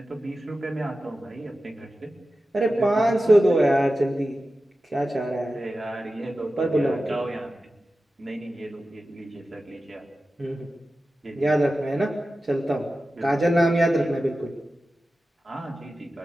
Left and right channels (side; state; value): both; normal; correlation 0.94